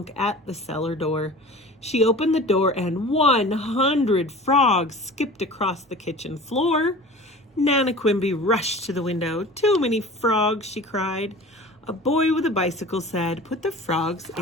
at the cellar door. She opened the door and 100 frogs skipped across the kitchen floor. Nana Quimby rushed to the window. "Too many frogs," she cried. A boy with a bicycle said, "Put the frogs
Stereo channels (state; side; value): normal; both; correlation 0.40